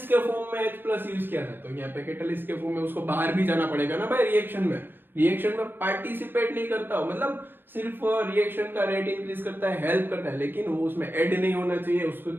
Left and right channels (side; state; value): left; late; 0.099 ms